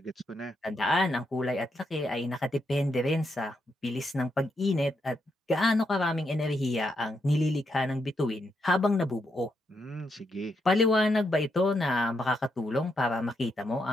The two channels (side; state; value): both; normal; correlation 0.81